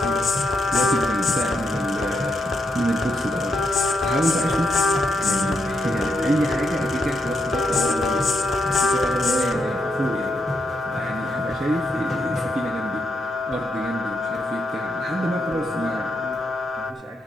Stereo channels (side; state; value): both; normal; correlation 0.80